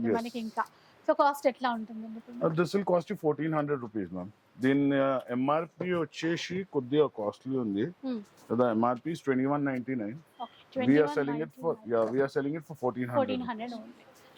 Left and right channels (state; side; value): identical; both; correlation 1.00